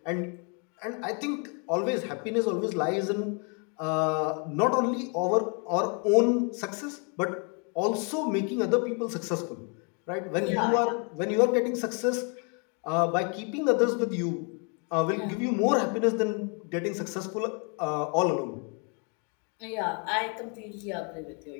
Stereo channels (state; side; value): quieter; right; 37.1 dB